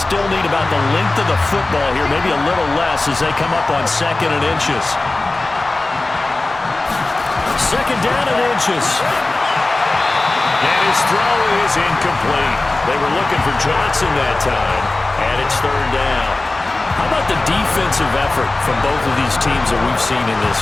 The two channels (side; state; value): right; quieter; 3.1 dB